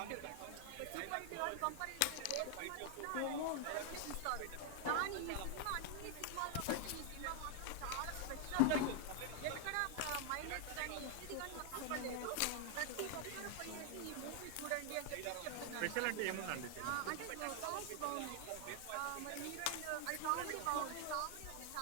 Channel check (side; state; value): both; different; correlation 0.00